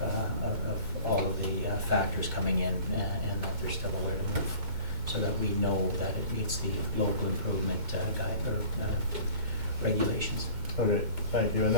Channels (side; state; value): left; late; 2.2 ms